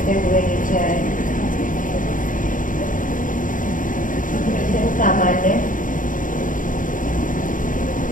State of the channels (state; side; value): late; right; 0.38 ms